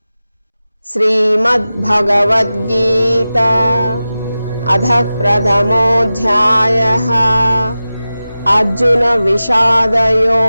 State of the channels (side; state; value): both; inverted; correlation -0.95